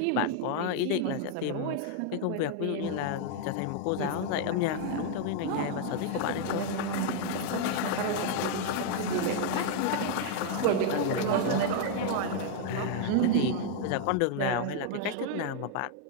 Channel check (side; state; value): both; different; correlation 0.00